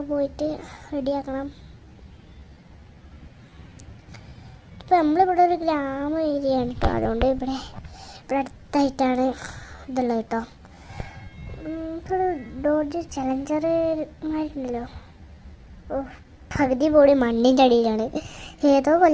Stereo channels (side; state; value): both; identical; correlation 1.00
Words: പോയിട്ട് റെഡിയാക്കണം. ഇപ്പം നമ്മളിവിടെ ഒരു ഗ്രാമ ഏരിയയാണ് കേട്ടോ. അതുകൊണ്ട് ഇവിടെ അടുത്തായിട്ടാണ് ഇതുള്ളത് കേട്ടോ. ഇപ്പോൾ ഡോഡ്ജ് ചലഞ്ചർമാരുണ്ടല്ലോ. ഓ, പകുതി പോടി മണ്ണിൻ്റെ അടിയിലാണ്. ഏതോ